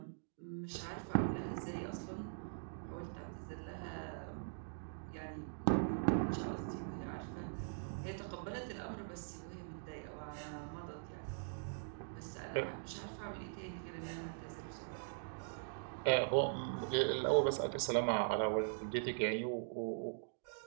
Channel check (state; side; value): silent; left; digital silence